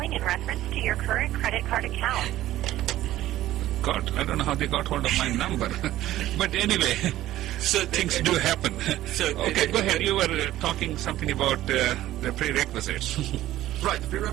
in reference to your current credit card account. God, I don't know how they got hold of my number. But anyway, So things do happen. Okay, go ahead. You were talking something about the prerequisites. Right, the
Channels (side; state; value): left; quieter; 14.5 dB